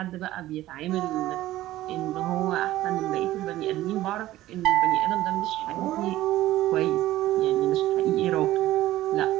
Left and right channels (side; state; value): left; quieter; 15.3 dB